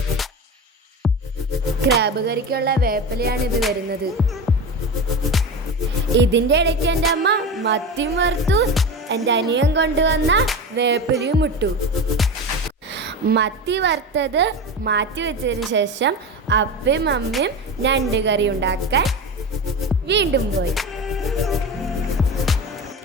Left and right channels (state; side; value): normal; both; correlation 0.26